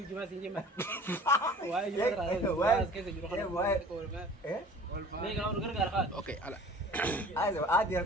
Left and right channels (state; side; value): normal; both; correlation 0.46